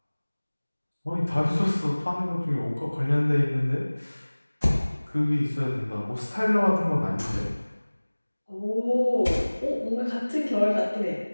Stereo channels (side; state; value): both; inverted; correlation -1.00